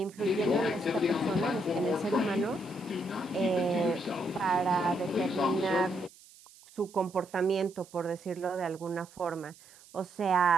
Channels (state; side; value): noise; right; hiss, 23 dB below the sound